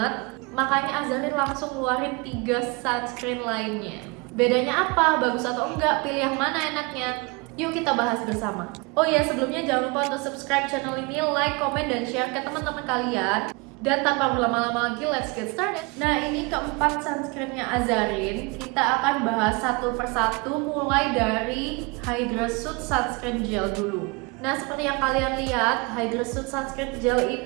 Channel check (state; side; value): quieter; left; 28.2 dB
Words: Makanya Azarin langsung ngeluarin 3 sunscreen lainnya. Bedanya apa? Bagus atau enggak? Pilih yang mana enaknya? Yuk kita bahas bersama. Oh ya, sebelumnya jangan lupa untuk subscribe channel ini, like, komen, dan share ke teman-teman kalian. Dan tanpa berlama-lama lagi, let's get started. Nah, ini keempat sunscreennya Azarin. Kita akan bahas satu persatu, mulai dari Hydra Suit Sunscreen Gel dulu. Nah, seperti yang kalian lihat, Hydra Suit Sunscreen Gel